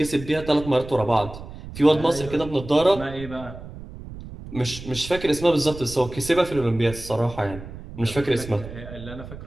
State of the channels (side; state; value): right; noise; rumble, 13 dB below the sound